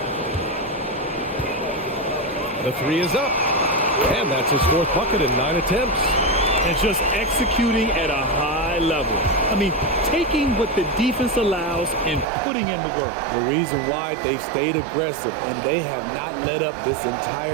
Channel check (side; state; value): left; drops out; at 12.2 s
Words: The three is up. And that's his 4th bucket in 9 attempts. And just executing at a high level. I mean, taking what the defense allows and putting in the work. The reason why they've stayed aggressive and they have not let up this